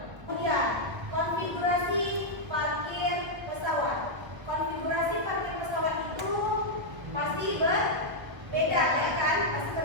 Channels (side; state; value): left; late; 1.5 ms